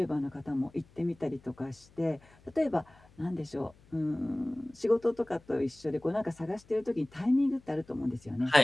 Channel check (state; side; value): noise; left; hum, 27 dB below the sound